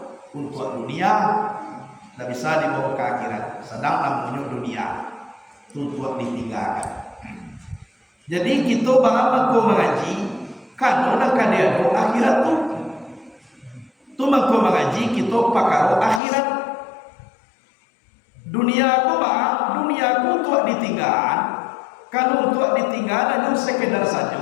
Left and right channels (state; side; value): drops out; right; at 16.2 s